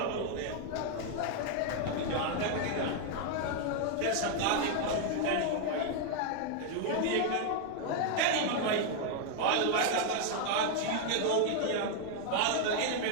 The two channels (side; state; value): both; different; correlation 0.00